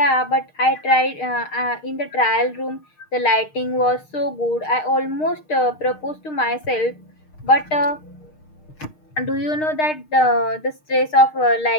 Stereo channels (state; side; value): late; right; 6.5 ms